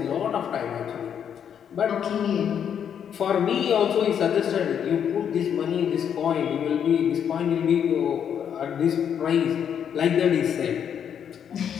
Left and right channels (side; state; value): right; quieter; 8.4 dB